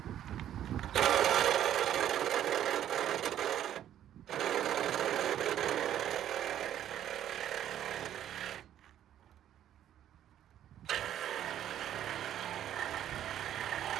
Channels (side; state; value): left; quieter; 11.1 dB